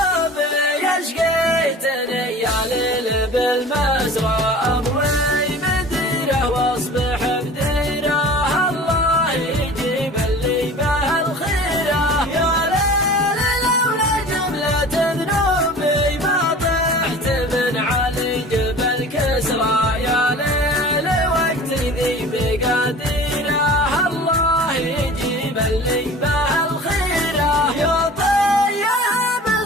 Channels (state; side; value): normal; both; correlation 0.41